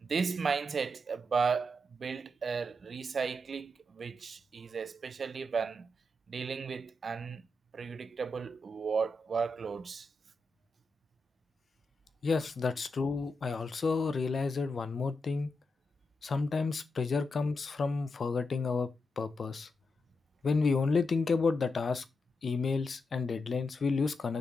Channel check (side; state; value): both; normal; correlation 0.85